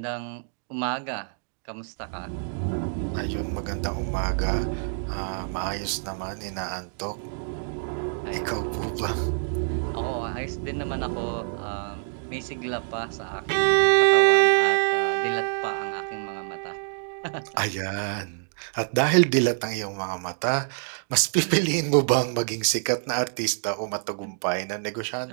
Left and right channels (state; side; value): silent; left; digital silence